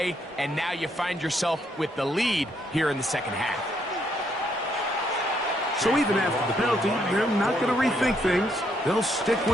and now you find yourself with the lead here in the 2nd half. So even after the penalty, they're not going to rethink things. They'll stick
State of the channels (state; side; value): normal; both; correlation 0.73